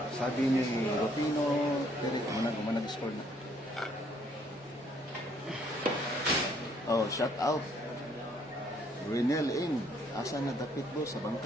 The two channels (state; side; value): normal; both; correlation 0.65